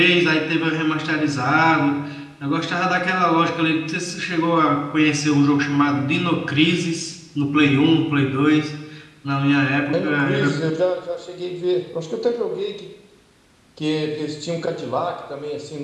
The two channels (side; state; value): both; identical; correlation 1.00